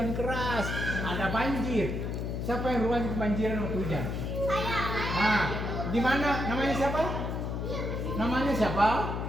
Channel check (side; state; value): left; noise; hum, 3 dB below the sound